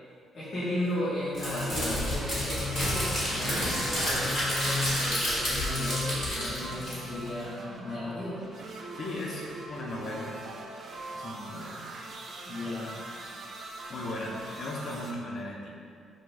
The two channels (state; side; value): normal; both; correlation 0.74